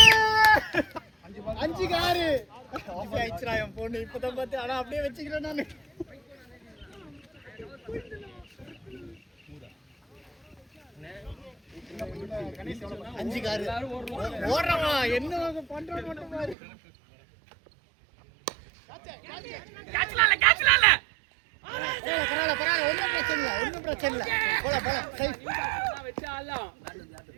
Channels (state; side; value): drops out; left; at 16.6 s